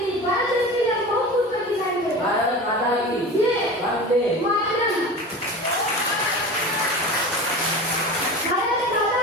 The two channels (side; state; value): both; normal; correlation 0.32